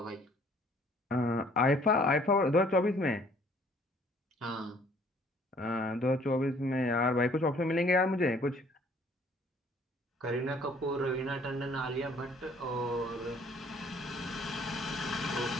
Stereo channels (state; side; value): normal; both; correlation 0.59